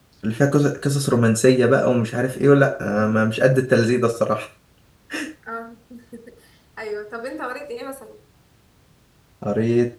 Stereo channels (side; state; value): both; identical; correlation 1.00